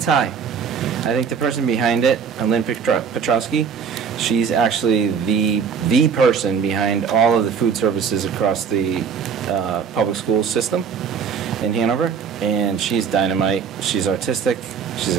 high. I think the person behind it, Lynn Petrowski, she's actually the person behind all of the food services across the public school system in Hanover, and she's dynamite. She's artistic, she's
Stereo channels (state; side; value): quieter; left; 6.7 dB